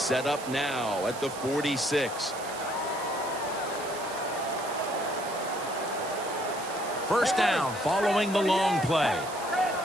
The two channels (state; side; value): noise; right; hiss, 13 dB below the sound